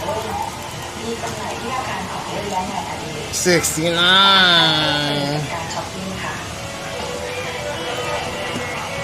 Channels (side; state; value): both; identical; correlation 1.00